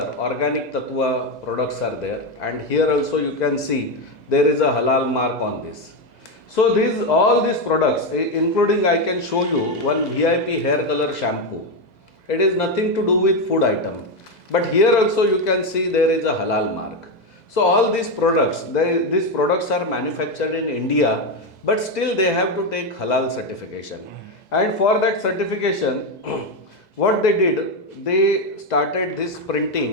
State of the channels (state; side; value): late; right; 2.0 ms